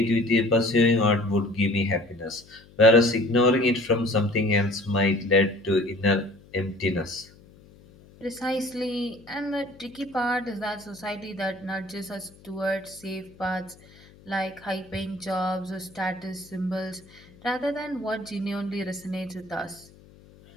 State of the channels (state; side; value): noise; left; hum, 25 dB below the sound